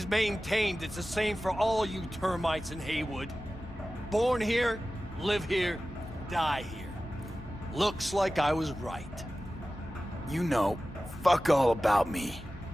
maintained it's the same for all you termites in Haywood. Born here, live here, die here. Looks like I was right. You know, fuck all about me.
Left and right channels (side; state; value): both; normal; correlation 0.96